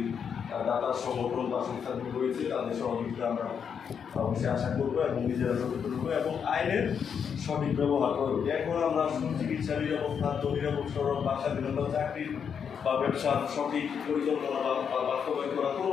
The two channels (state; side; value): quieter; right; 7.2 dB